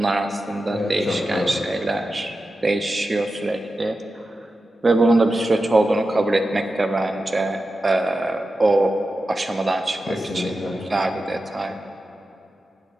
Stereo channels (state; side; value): normal; both; correlation 0.92